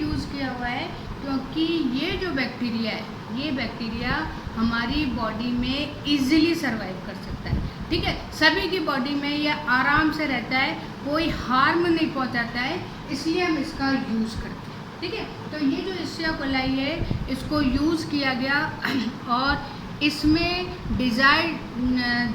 किया हुआ है क्योंकि ये जो बैक्टीरिया है, ये बैक्टीरिया हमारी बॉडी में इजीली सर्वाइव कर सकता है। ठीक है, सभी की बॉडी में ये आराम से रहता है, कोई हार्म नहीं पहुंचाता है, इसलिए हम इसका यूज़ करते हैं। ठीक है। तो ये जो इश्चिया कोलाई है इसको यूज़ किया गया और इसमें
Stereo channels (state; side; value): identical; both; correlation 1.00